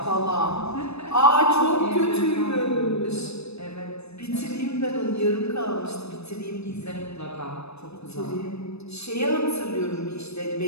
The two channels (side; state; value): right; late; 0.79 ms